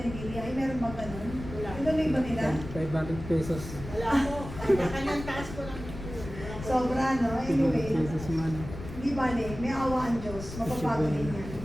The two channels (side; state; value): left; noise; rumble, 11 dB below the sound